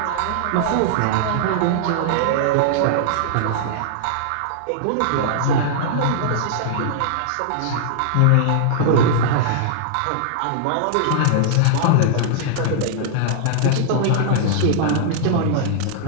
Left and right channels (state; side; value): different; both; correlation -0.01